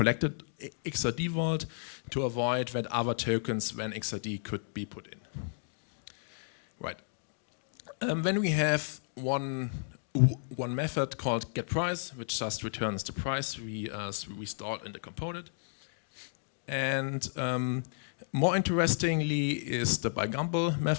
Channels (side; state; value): right; silent; digital silence